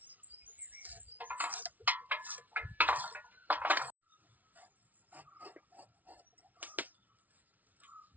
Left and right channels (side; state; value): left; late; 0.076 ms